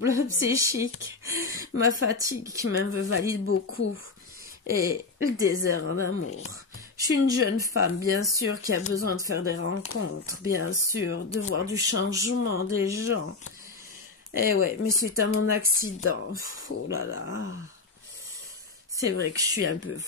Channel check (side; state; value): right; quieter; 4.1 dB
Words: psychiques, ma fatigue qui m'invalide beaucoup et le désert en amour. Je suis une jeune femme, bien sûr, qui a besoin de faire des rencontres, bien sûr, de voir du changement des gens. Eh ouais, mais suite à mon accident, oh là là, c'est vrai que je suis un peu